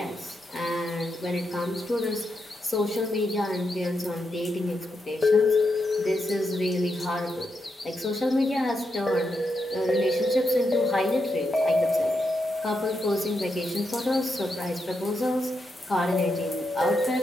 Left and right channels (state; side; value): normal; both; correlation 0.84